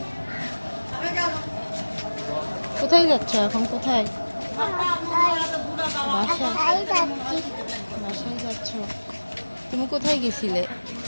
কোথায় যাচ্ছ এখন? কোথায়? বাসায় যাচ্ছ? তুমি কোথায় গেছিলে?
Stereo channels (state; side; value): inverted; both; correlation -1.00